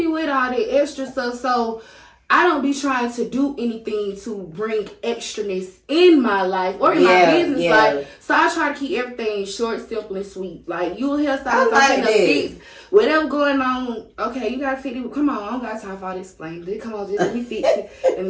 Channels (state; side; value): identical; both; correlation 1.00